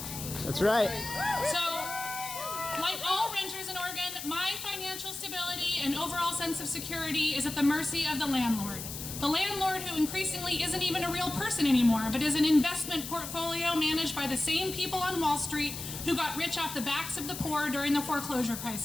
That's right. So, like all renters in Oregon, my financial stability and overall sense of security is at the mercy of the landlord. The landlord who increasingly isn't even a real person anymore, but is an investment portfolio managed by the same people on Wall Street who got rich off the backs of the poor during the foreclosure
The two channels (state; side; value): noise; left; hiss, 8 dB below the sound